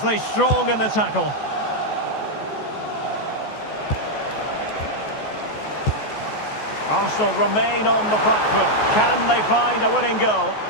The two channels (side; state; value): right; late; 14 ms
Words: strong in the tackle. Arsenal remain on the back foot. Can they find a winning goal?